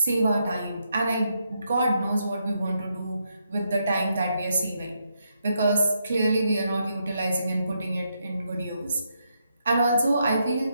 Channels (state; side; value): inverted; both; correlation -0.80